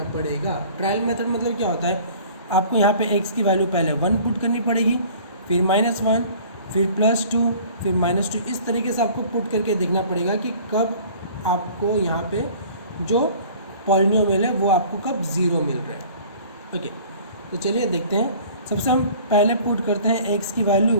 पड़ेगा। ट्रायल मेथड मतलब क्या होता है, आपको यहाँ पे x की वैल्यू पहले 1 पुट करनी पड़ेगी, फिर -1, फिर +2, फिर -2, इस तरीके से आपको पुट करके देखना पड़ेगा कि कब आपको यहाँ पे जो पॉलिनोमियल है वो आपको कब 0 मिल रहा है। ओके, तो चलिए देखते हैं। सबसे हम पहले पुट करते हैं x की वैल्यू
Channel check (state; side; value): inverted; both; correlation -0.48